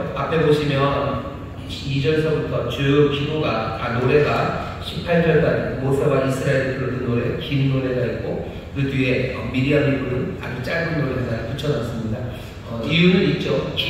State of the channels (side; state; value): both; identical; correlation 1.00